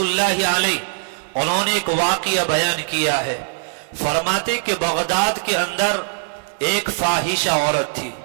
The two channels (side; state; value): left; silent; 65 dB below the other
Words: اللہ علیہ، انہوں نے ایک واقعہ بیان کیا ہے۔ فرماتے کہ بغداد کے اندر ایک فاحشہ عورت تھی،